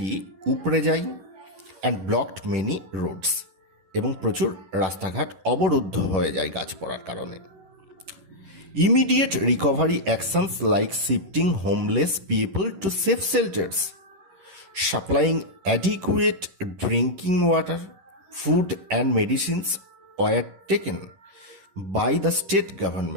উপড়ে যায়। অ্যান্ড ব্লকড মেনি রোডস, এবং প্রচুর রাস্তাঘাট অবরুদ্ধ হয়ে যায় গাছ পড়ার কারণে। Immediate recovery actions like shifting homeless people to safe shelters, supplying adequate drinking water, food and medicines were taken by the state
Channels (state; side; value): late; left; 11 ms